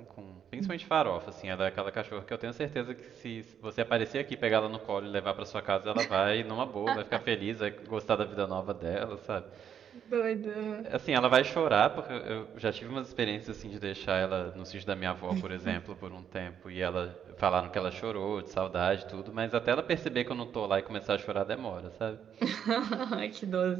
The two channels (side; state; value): left; quieter; 8.6 dB